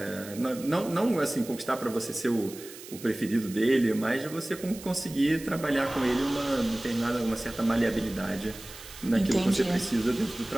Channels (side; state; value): right; noise; hiss, 16 dB below the sound